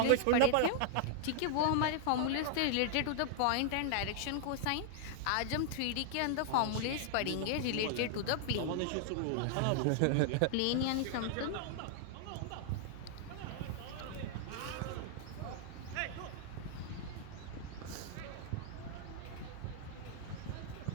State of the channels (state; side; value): different; both; correlation -0.01